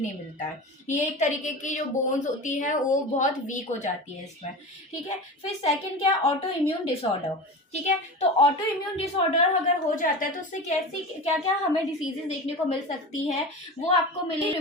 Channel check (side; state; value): both; normal; correlation 0.29